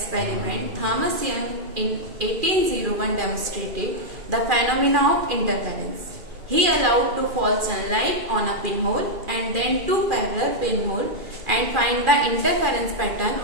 Thomas Young in 1801 demonstrated the phenomena of interference. He allowed to fall sunlight on a pinhole and then two parallel pinholes and find the interference pattern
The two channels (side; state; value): left; late; 2.4 ms